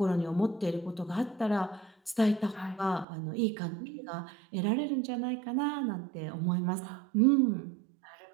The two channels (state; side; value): drops out; left; at 3.1 s